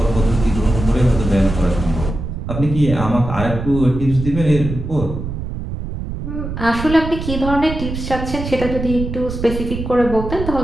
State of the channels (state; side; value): noise; right; rumble, 6 dB below the sound